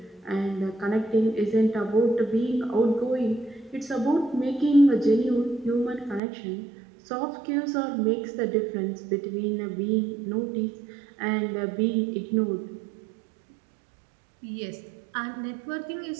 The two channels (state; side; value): drops out; left; at 6.2 s